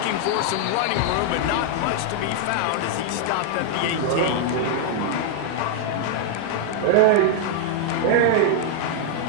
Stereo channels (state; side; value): different; both; correlation -0.01